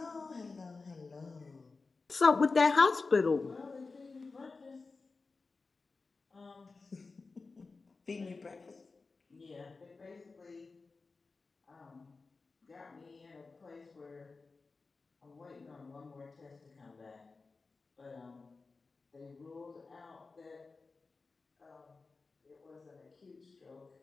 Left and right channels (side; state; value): right; quieter; 4.1 dB